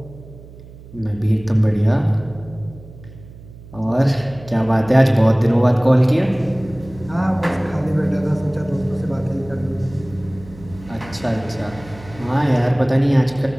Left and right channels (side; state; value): right; noise; hum, 19 dB below the sound